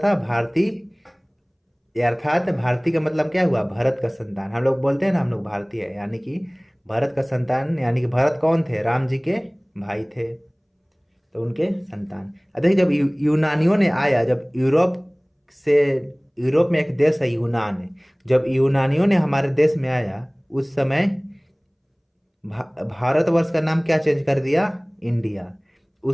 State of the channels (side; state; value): both; identical; correlation 1.00